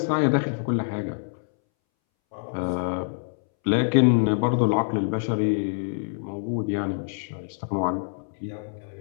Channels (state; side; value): silent; right; 61 dB below the other